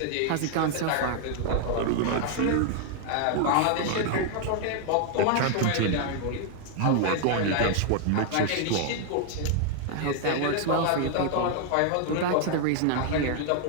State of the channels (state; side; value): different; both; correlation 0.00